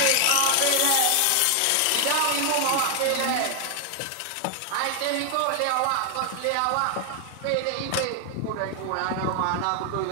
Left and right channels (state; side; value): different; both; correlation 0.00